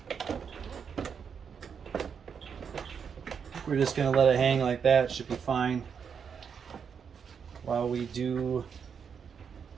We're just going to let it hang like that. Should be fine while we do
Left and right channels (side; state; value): left; quieter; 6.8 dB